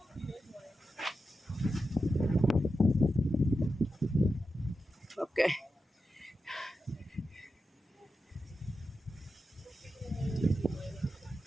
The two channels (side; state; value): both; normal; correlation 0.89